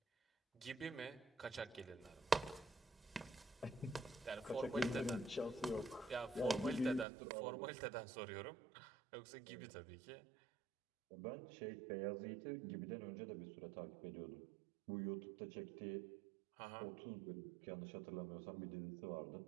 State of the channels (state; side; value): drops out; left; at 7.1 s